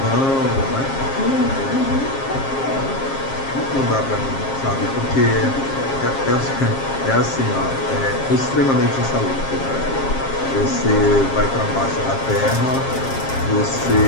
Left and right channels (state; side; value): late; right; 7.4 ms